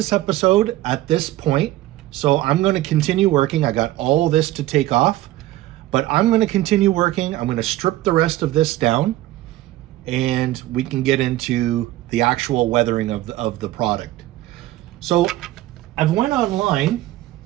episode at this point. So I'm going to continue working. I got all this to take off, but I'm going to continue working. I'm going to strip the rest of this down, and we can get into the actual weathering of the product. So I've went online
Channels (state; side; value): quieter; left; 15.8 dB